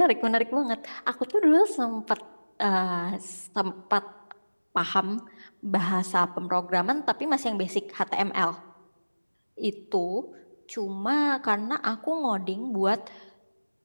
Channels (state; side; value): inverted; both; correlation -1.00